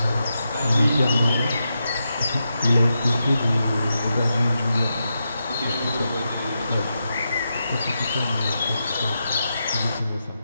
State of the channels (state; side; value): inverted; both; correlation -0.87